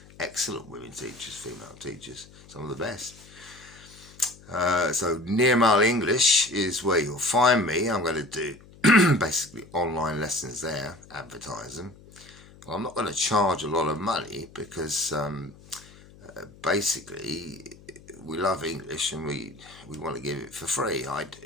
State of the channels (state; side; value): noise; left; hum, 22 dB below the sound